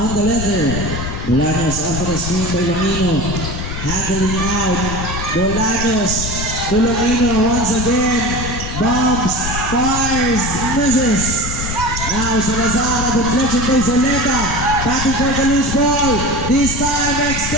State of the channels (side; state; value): left; noise; rumble, 6 dB below the sound